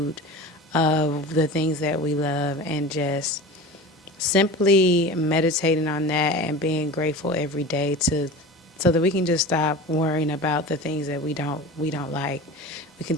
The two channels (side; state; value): both; normal; correlation 0.33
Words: of the things that we love and just simply meditating on that and being grateful every day to so that we can just stop worrying about the things that we don't like. We